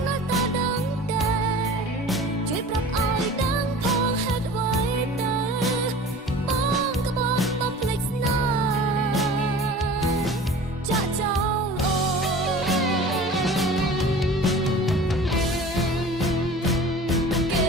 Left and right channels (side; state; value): both; normal; correlation 0.41